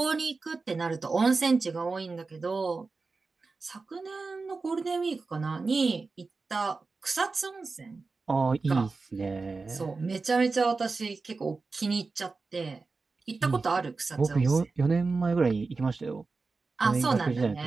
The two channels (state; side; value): quieter; left; 4.1 dB